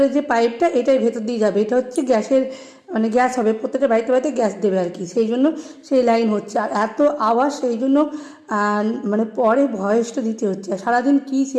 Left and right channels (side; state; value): both; identical; correlation 1.00